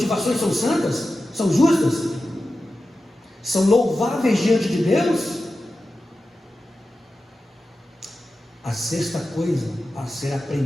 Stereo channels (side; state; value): both; normal; correlation 0.93